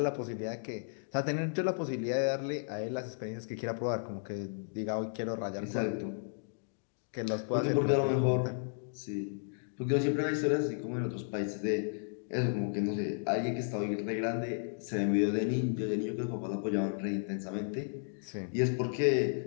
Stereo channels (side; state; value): right; silent; digital silence